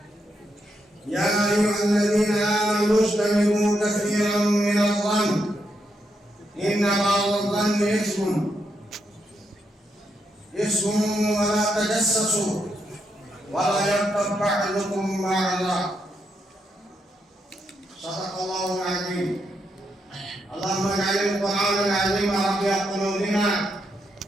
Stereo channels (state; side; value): normal; both; correlation 0.81